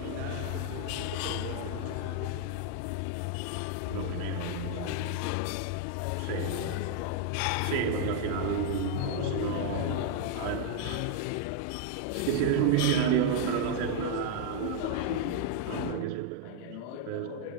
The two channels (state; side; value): different; both; correlation 0.00